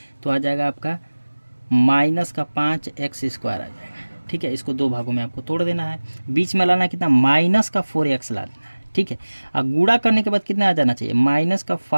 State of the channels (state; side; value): inverted; both; correlation -1.00